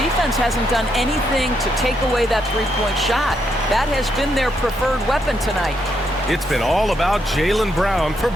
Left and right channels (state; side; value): normal; both; correlation 0.78